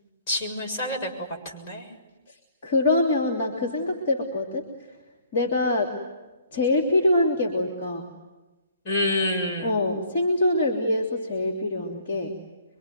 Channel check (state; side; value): inverted; both; correlation -0.59